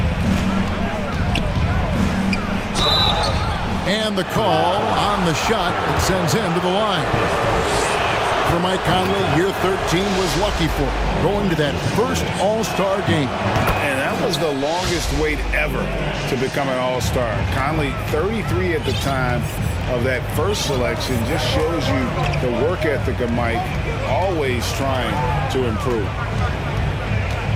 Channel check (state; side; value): identical; both; correlation 1.00